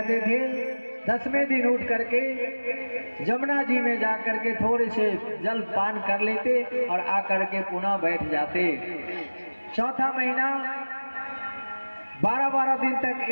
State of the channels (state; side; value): inverted; both; correlation -1.00